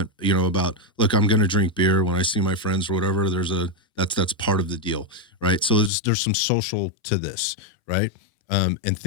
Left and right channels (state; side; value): drops out; right; at 5.9 s